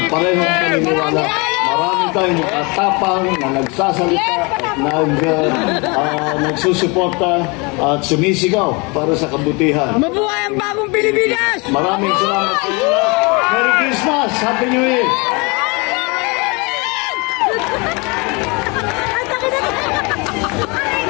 parehong paniniwala, marami tayong katapang na nagsasalita at nagsusuporta at sumisigaw para sa kabutihan. Mabuhay ang bagong Pilipinas! Maraming salamat sa inyo. Merry Christmas! Happy New Year!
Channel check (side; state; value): right; quieter; 28.9 dB